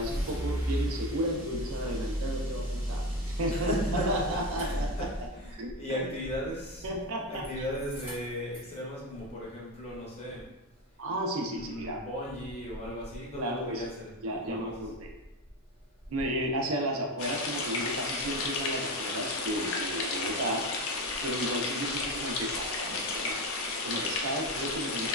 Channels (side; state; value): both; normal; correlation 0.19